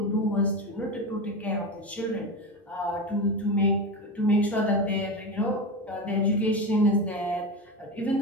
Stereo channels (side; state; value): both; normal; correlation 0.21